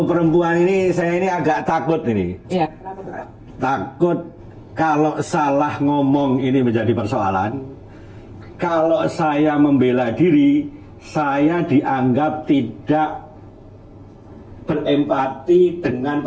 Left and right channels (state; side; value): identical; both; correlation 1.00